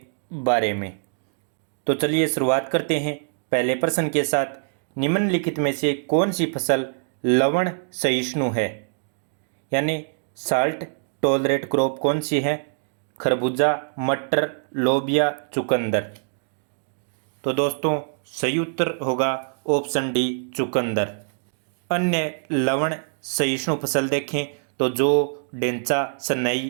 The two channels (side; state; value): left; silent; digital silence